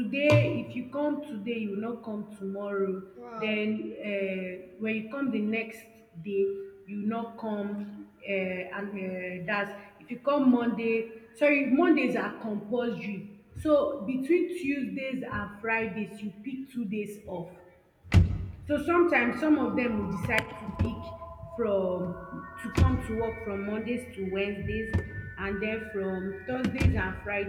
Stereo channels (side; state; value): both; identical; correlation 1.00